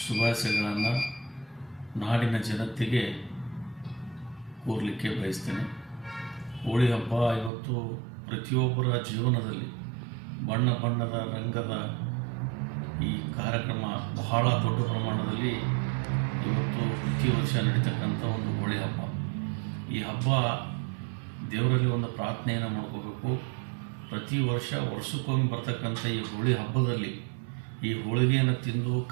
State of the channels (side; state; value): left; drops out; at 7.5 s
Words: ಶುಭಾಶಯಗಳನ್ನು ನಾಡಿನ ಜನತೆಗೆ ಕೋರಲಿಕ್ಕೆ ಬಯಸ್ತೇನೆ. ಹೋಳಿ ಹಬ್ಬ ಇವತ್ತು ಪ್ರತಿಯೊಬ್ಬರ ಜೀವನದಲ್ಲಿ ಬಣ್ಣ ಬಣ್ಣದ ರಂಗದ ಈ ಕಾರ್ಯಕ್ರಮ ಬಹಳ ದೊಡ್ಡ ಪ್ರಮಾಣದಲ್ಲಿ ಇವತ್ತು ಪ್ರತಿ ವರ್ಷ ನಡೀತಕ್ಕಂಥ ಒಂದು ಹೋಳಿ ಹಬ್ಬ. ಈ ಹಬ್ಬ ದೇವರಲ್ಲಿ ಒಂದು ಪ್ರಾರ್ಥನೆಯನ್ನು ಮಾಡ್ಕೋಬೇಕು. ಪ್ರತಿ ವರ್ಷಕ್ಕೊಮ್ಮೆ ಬರ್ತಕ್ಕಂಥ ಈ ಹೋಳಿ ಹಬ್ಬದಲ್ಲಿ ಈ ಹೋಳಿಗೆಯನ್ನು ತಿಂದು